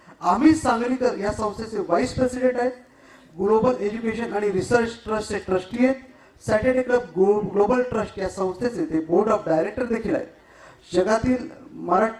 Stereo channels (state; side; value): identical; both; correlation 1.00